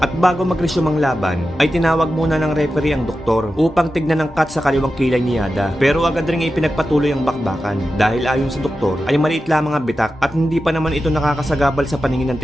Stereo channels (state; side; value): normal; both; correlation 0.92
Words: bago mag-resume ang laban, ay tinawag muna ng referee ang doktor upang tignan ang cut sa kaliwang kilay ni Yada. Pero agad rin ipinagpatuloy ang bakbakan dahil ayon sa doktor ay maliit lamang ang bitak at hindi pa naman ito nakakasagabal sa paningin ng